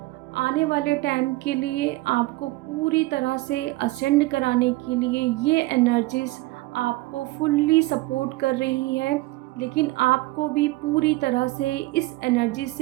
आने वाले टाइम के लिए आपको पूरी तरह से असेंड कराने के लिए ये एनर्जीज़ आपको फुल्ली सपोर्ट कर रही है, लेकिन आपको भी पूरी तरह से इस एनर्जी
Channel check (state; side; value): quieter; left; 20.1 dB